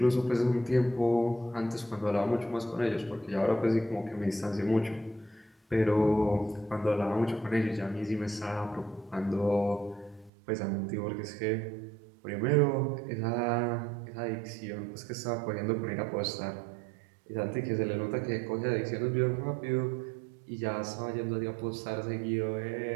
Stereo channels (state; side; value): drops out; left; at 10.3 s